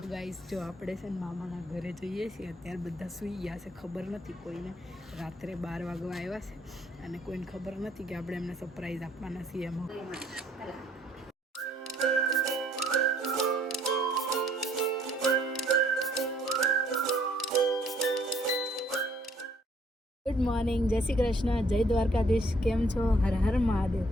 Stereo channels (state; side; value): normal; both; correlation 0.64